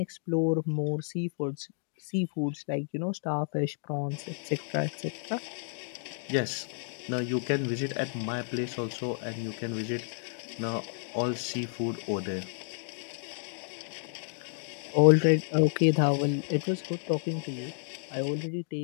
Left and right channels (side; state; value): right; silent; digital silence